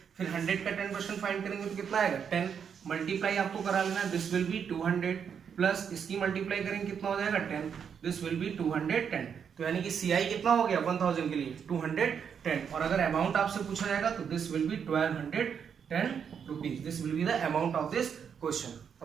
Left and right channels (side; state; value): left; quieter; 7.3 dB